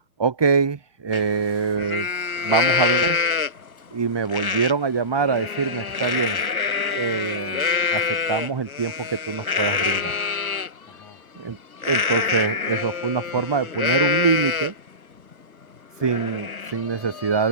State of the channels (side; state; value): left; late; 1.2 ms